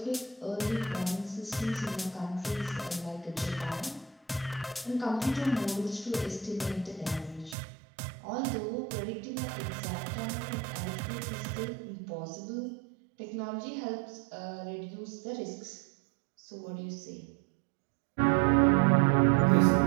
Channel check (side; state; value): left; drops out; at 7.6 s